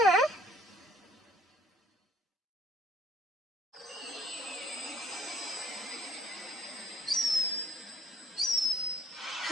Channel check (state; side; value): normal; both; correlation 0.58